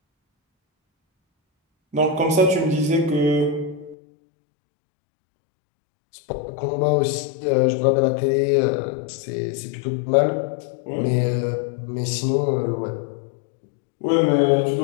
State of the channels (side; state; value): right; drops out; at 4.0 s